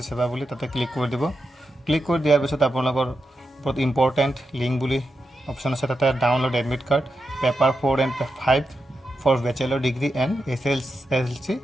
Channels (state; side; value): normal; both; correlation 0.87